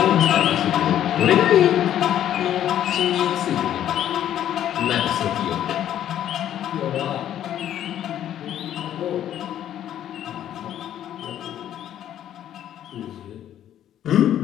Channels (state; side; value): quieter; right; 11.1 dB